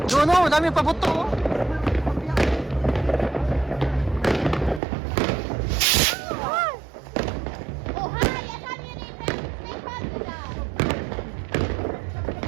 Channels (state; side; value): drops out; left; at 4.8 s